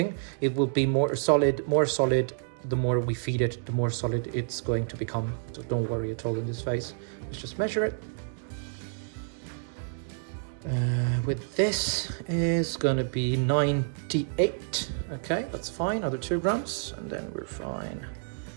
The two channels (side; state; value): left; silent; digital silence